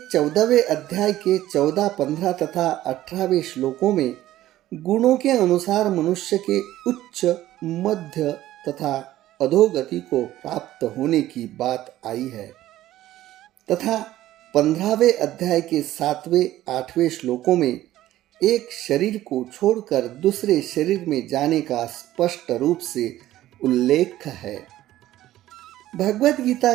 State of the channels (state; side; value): quieter; left; 14.4 dB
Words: 14वें अध्याय के 14, 15 तथा 18वें श्लोकों में गुणों के अनुसार मनुष्य के उच्च, मध्य तथा अधोगति को प्राप्त होने की बात आई है तथा 15वें अध्याय के 7वें, 8वें श्लोकों में एक शरीर को छोड़कर दूसरे शरीर में जाने का स्पष्ट रूप से उल्लेख है। भगवद गीता